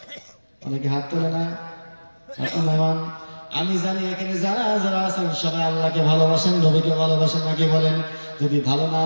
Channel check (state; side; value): inverted; both; correlation -1.00